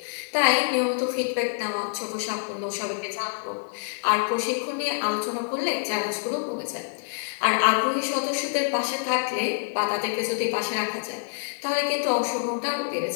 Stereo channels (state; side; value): silent; right; digital silence